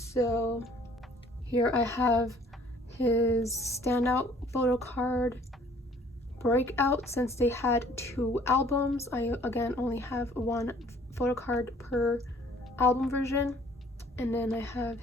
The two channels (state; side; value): normal; both; correlation 0.56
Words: here I have his Standout photo card Breakout. Since they had 2 albums, I again only have 1 photo card per album version. And then I have